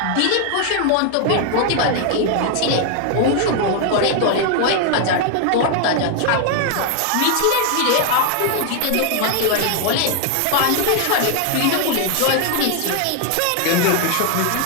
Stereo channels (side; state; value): both; different; correlation 0.00